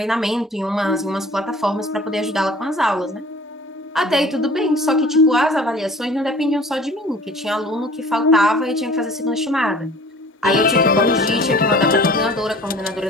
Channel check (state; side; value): normal; both; correlation 0.47